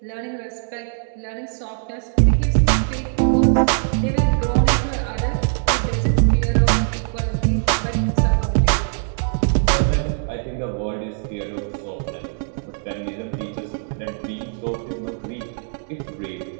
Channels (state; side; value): silent; left; digital silence